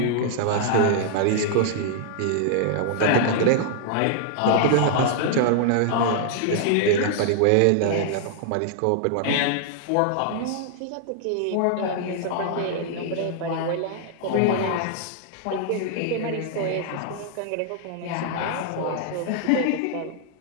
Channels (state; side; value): different; both; correlation -0.01